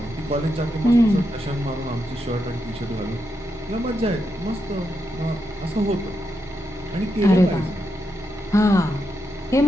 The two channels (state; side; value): normal; both; correlation 0.84